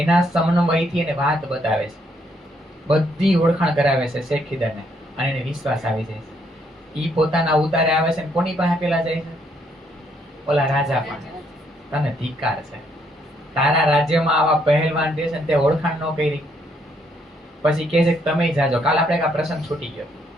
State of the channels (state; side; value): normal; both; correlation 0.72